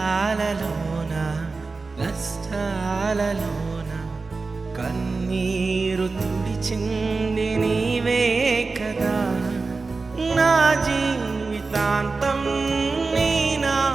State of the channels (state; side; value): quieter; left; 4.0 dB